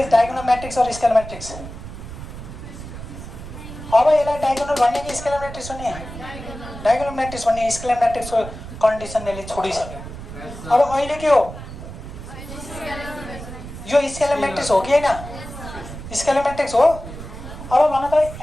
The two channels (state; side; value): noise; right; rumble, 11 dB below the sound